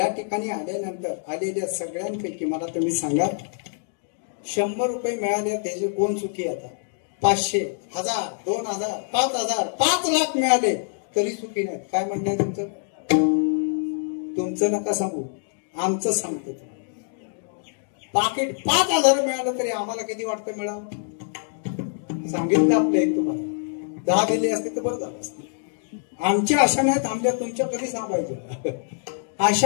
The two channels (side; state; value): right; silent; 62 dB below the other